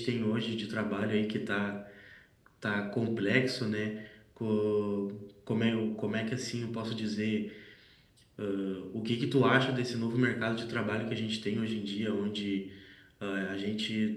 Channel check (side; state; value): both; identical; correlation 1.00